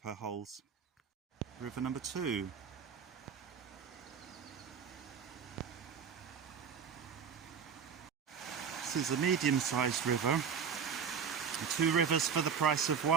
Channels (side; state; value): left; quieter; 7.0 dB